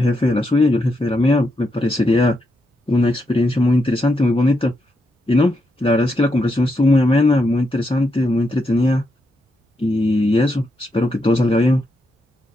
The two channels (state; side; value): normal; both; correlation 0.82